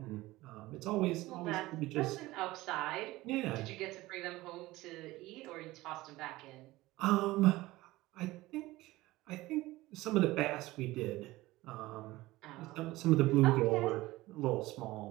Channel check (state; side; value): quieter; left; 18.6 dB